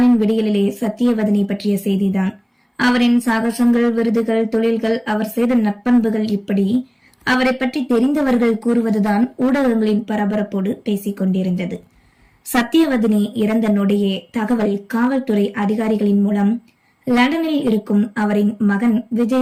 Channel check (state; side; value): identical; both; correlation 1.00